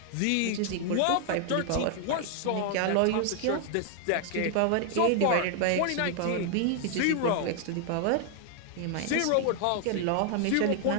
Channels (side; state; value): both; different; correlation 0.00